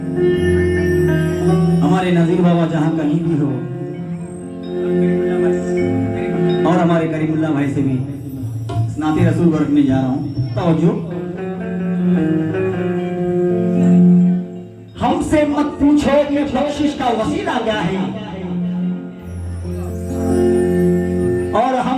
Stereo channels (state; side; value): identical; both; correlation 1.00